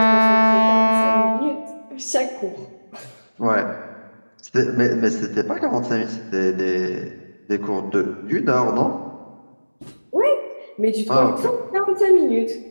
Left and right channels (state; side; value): inverted; both; correlation -1.00